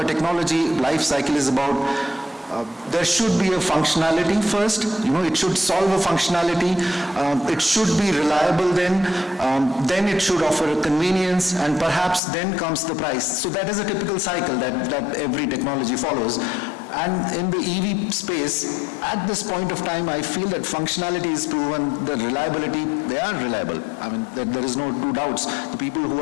a technology life cycle is about, there should be a functionality first, it should solve a functionality, it should be reliable then it should offer a convenience, and perhaps then comes the price. So that is a typical cycle that every technology follows. And in the EV space, at this point of time, I feel that functionality is proven, the reliability, they are reliable. I mean, there is no two doubts. The people who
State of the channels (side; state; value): right; drops out; at 12.2 s